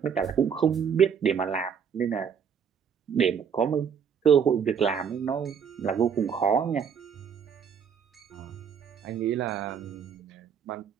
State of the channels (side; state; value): left; quieter; 7.2 dB